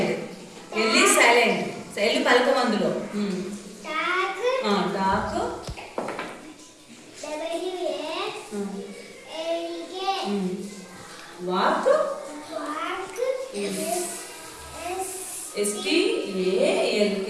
L is silent. L పలకం అందులో. Talk. Walk. S-T-A-L-K.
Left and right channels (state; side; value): identical; both; correlation 1.00